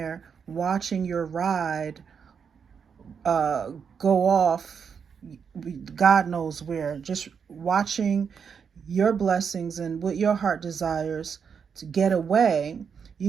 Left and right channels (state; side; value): quieter; left; 6.6 dB